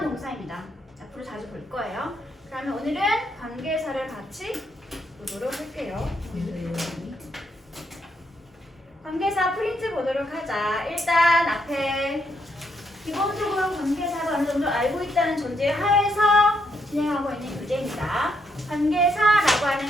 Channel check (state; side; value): normal; both; correlation 0.76